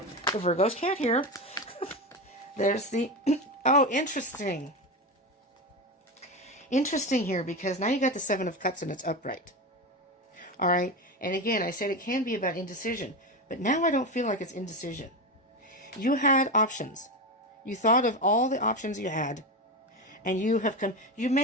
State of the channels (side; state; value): both; normal; correlation 0.18